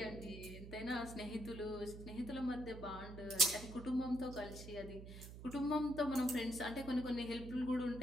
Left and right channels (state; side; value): noise; right; hum, 12 dB below the sound